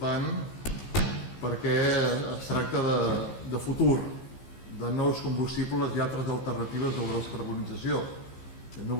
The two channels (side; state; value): right; late; 15 ms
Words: perquè es tracta de futur, de nous combustibles y altres alternatives de la descarbonizació, de